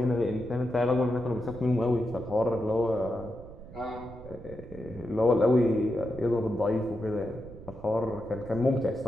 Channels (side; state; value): right; noise; rumble, 16 dB below the sound